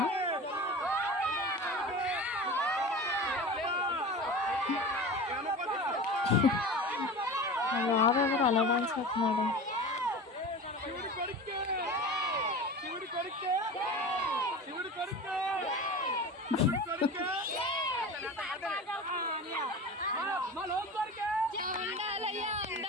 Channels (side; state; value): both; normal; correlation 0.32